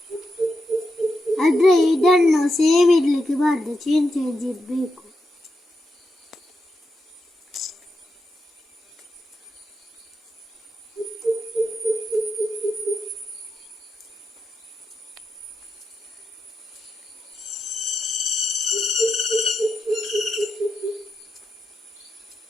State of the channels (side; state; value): both; normal; correlation 0.86